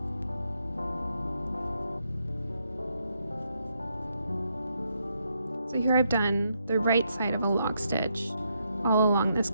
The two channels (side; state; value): both; inverted; correlation -0.78